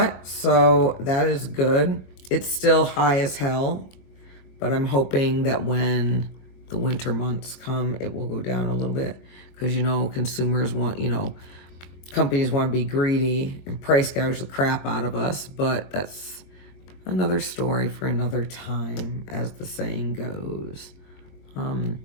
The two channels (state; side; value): late; right; 22 ms